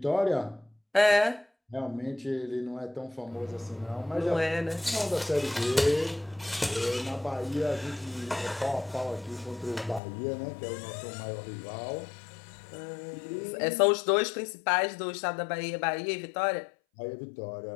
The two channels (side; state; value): right; drops out; at 10.0 s